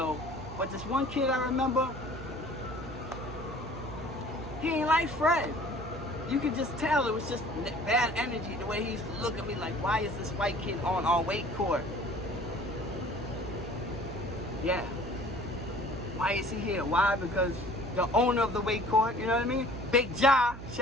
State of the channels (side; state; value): right; noise; hum, 11 dB below the sound